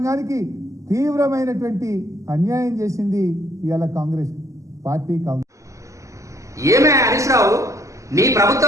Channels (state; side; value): late; left; 0.15 ms